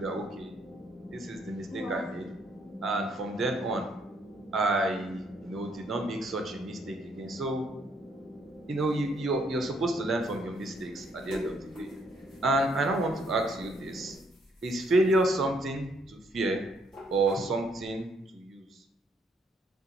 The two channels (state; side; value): normal; both; correlation 0.69